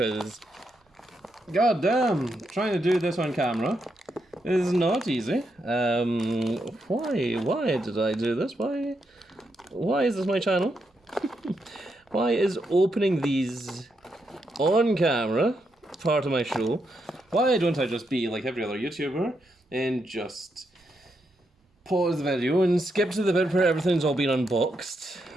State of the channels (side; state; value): both; normal; correlation 0.82